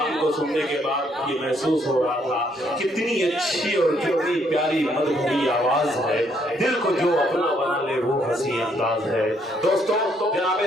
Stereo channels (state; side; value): normal; both; correlation 0.70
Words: को सुनने के बाद ये महसूस हो रहा था कितनी अच्छी और कितनी प्यारी मधुरी आवाज है, दिल को जो अपना बना ले वो हंसी अंदाज है। दोस्तों, जनाब